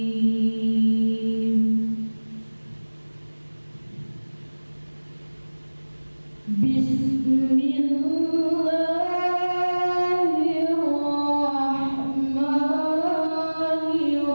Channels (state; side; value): inverted; both; correlation -1.00